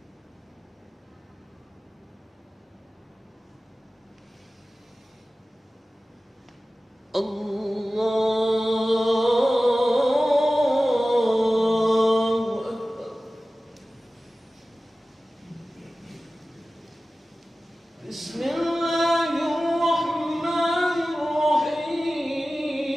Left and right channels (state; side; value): normal; both; correlation 0.96